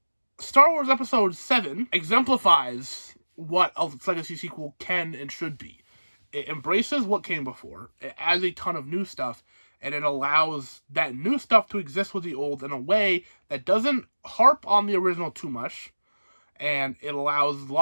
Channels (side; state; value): both; inverted; correlation -1.00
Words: Star Wars Episode 7 exemplifies what a legacy sequel can and should be. It embraces what came before, it adds a ton of new stuff, and it allows that new stuff to exist with the old in a way that doesn't harp on the original too much, and it allows